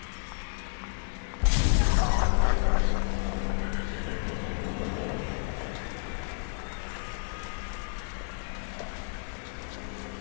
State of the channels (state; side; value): silent; right; 57 dB below the other